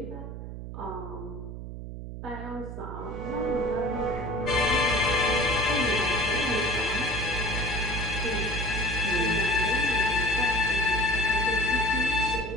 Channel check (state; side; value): noise; right; hum, 9 dB below the sound